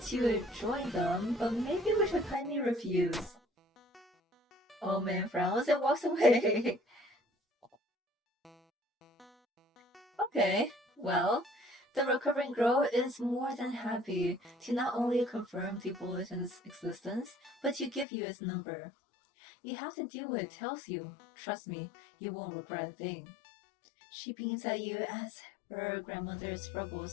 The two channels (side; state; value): right; drops out; at 18.1 s